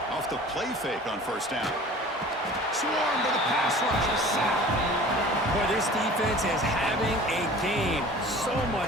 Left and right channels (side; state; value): both; normal; correlation 0.43